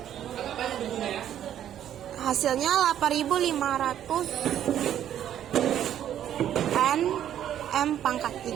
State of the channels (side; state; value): left; quieter; 10.7 dB